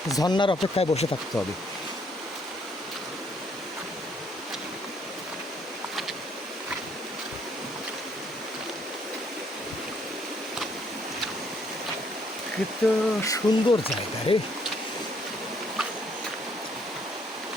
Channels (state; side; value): normal; both; correlation 0.68